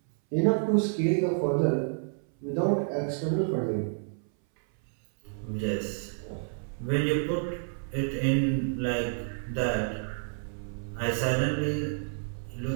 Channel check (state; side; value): silent; left; 58 dB below the other